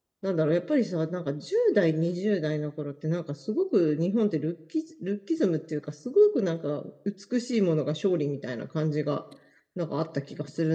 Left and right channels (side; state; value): both; identical; correlation 1.00